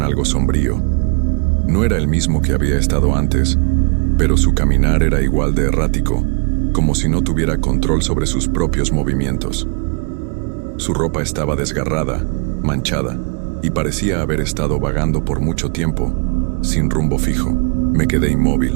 algo sombrío. No era el mismo que había estado antes, pero su caminar era igual de errático, como si no tuviera control sobre sus propios movimientos. Su ropa estaba desgarrada, manchada, y parecía haber estado vagando por mucho tiempo, sin rumbo fijo. Me quedé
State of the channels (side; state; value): left; quieter; 39.4 dB